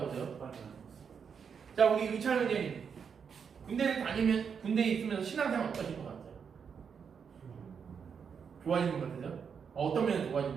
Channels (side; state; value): left; quieter; 6.7 dB